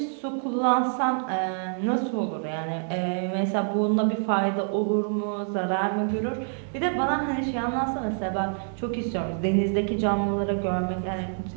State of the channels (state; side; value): silent; left; 59 dB below the other